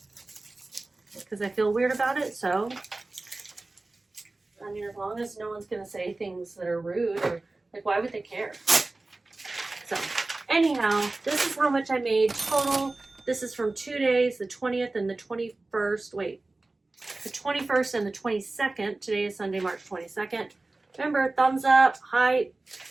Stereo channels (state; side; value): quieter; left; 3.1 dB